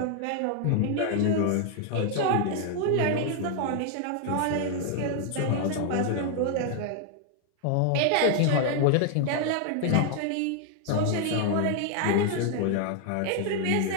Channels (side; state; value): both; different; correlation 0.00